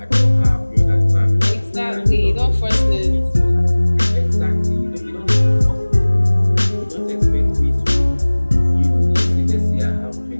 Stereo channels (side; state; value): both; inverted; correlation -1.00